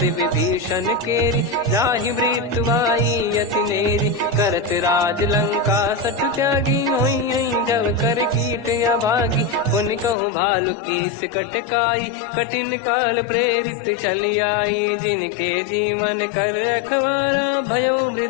विभीषण केरी जाहि मृत्यु आई यति नेरी करत राज लंका सठ त्यागी हुई जब कर कीट अभागी उन कहूँ भालु कीस कटकाई कठिन काल प्रेरित चली आई जिनके जीवन कर रखवारा भयो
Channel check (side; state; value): right; drops out; at 10.2 s